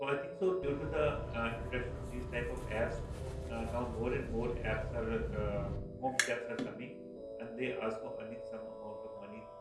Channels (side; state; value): both; identical; correlation 1.00